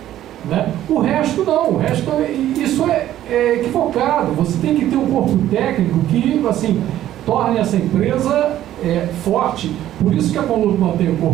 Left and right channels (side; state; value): left; quieter; 12.7 dB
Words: Né? O resto não, o resto isso é equivocado. Você tem que ter um corpo técnico que, assim, torne essa empresa forte. Por isso que a Conlurb mantém o